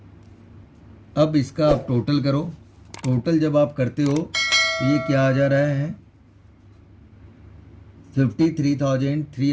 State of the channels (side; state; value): both; identical; correlation 1.00